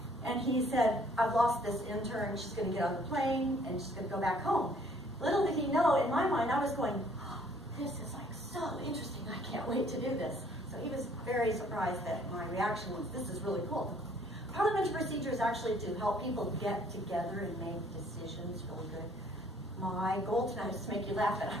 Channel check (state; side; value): normal; both; correlation 0.60